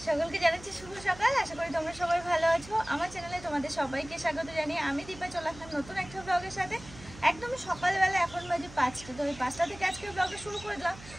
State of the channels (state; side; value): noise; right; hum, 17 dB below the sound